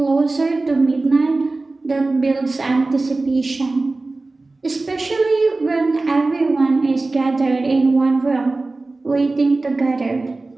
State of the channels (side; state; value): left; quieter; 3.3 dB